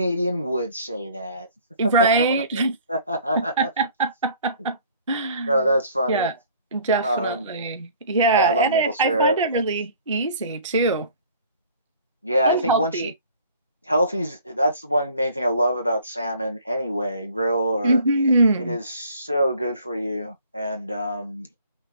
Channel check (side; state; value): both; inverted; correlation -0.52